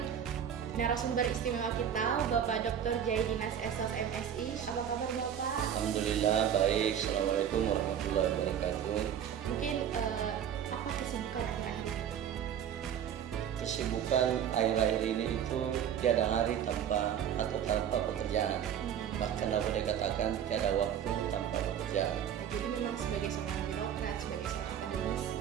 narasumber istimewa kita, Bapak Dr. Jaidinas Esos MSI. Apa kabar Bapak? Alhamdulillah baik. Assalamualaikum warahmatullahi wabarakatuh. Mungkin apa kesibukan akhir-akhir ini? Kesibukan akhir-akhir ini itu tiada hari tanpa pekerjaan. Bahkan aku boleh katakan tiada waktu tanpa pekerjaan. Jadi memang sebagai seorang birokrat, sebagai seorang akademisi,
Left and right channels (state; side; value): quieter; left; 9.1 dB